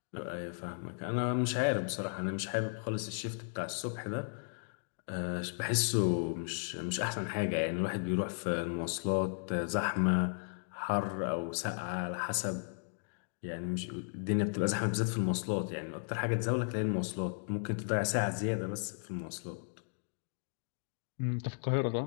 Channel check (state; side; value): silent; right; digital silence